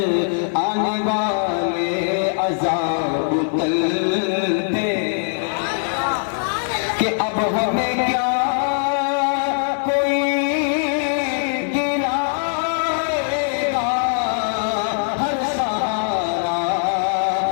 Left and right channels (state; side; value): silent; right; 62 dB below the other